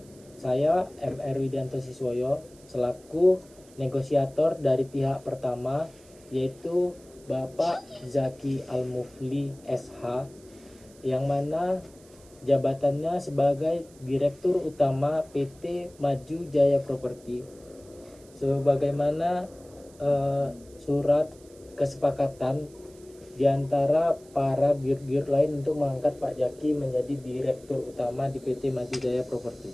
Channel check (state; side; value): noise; right; hiss, 26 dB below the sound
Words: Saya MR Widianto Siswoyo selaku negosiator dari pihak pertama, yaitu Bapak Zaki Al-Mufli SH, yang mana jabatannya sebagai Direktur Utama PT Maju Jaya Properti. Sebagaimana surat kesepakatan di antara para dir-dir lain untuk mengangkat Pak Zaki menjadi Direktur Utama di PT Maju Jaya Properti.